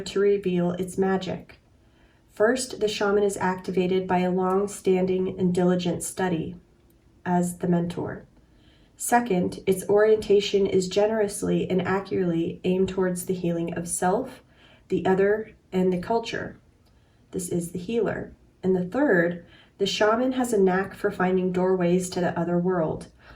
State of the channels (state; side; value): identical; both; correlation 1.00